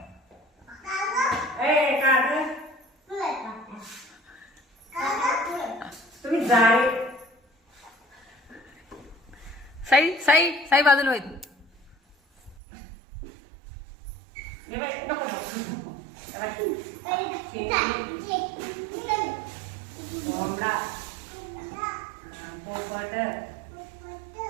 तुम्ही जाळे साई साई साई बाजूला होईल. कोंबडा पोपट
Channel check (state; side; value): drops out; left; at 12.6 s